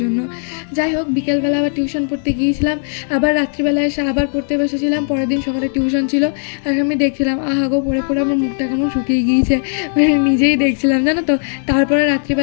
জন্য। যাই হোক, বিকেলবেলা আবার টিউশন পড়তে গিয়েছিলাম। আবার রাত্রিবেলা এসে আবার পড়তে বসেছিলাম। পরের দিন সকালে টিউশন ছিল। আর আমি দেখছিলাম আহাগো পড়ে পড়ে আমার মুখটা কেমন শুকিয়ে গিয়েছে, নিজেই দেখছিলাম জানো তো। তারপরে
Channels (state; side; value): silent; right; digital silence